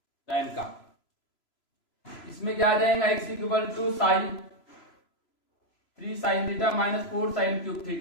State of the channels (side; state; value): right; late; 3.0 ms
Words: tan का। इसमें क्या आ जाएगा, x equal to sine 3 sine theta minus 4 sine cube